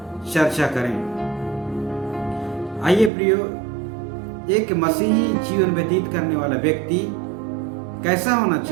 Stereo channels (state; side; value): drops out; left; at 3.1 s